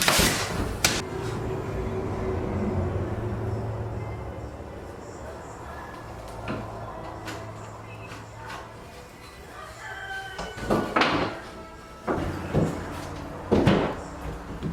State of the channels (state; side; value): identical; both; correlation 1.00